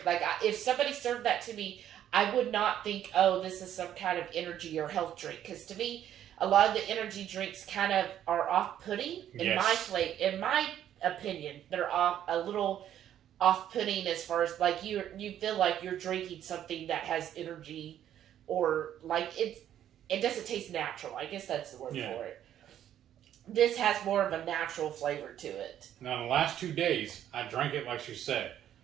Like if somebody served that to me, I would not think, oh, this is some kind of energy or health drink. Because to me, a lot of the energy drinks kind of are off-putting. In my opinion, they're a little off-putting as far as like you feel like you're drinking something that has energy, or like it doesn't taste natural. I guess that's the word for it. This has more of a natural flavor to it. Now, in the last 2 days, I drank it like she said.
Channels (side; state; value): left; quieter; 10.8 dB